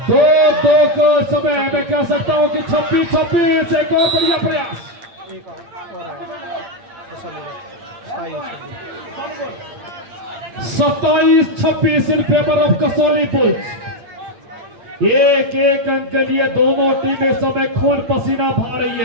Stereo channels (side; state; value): left; late; 8.7 ms